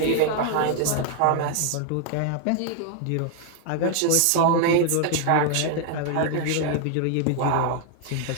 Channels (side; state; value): both; different; correlation 0.00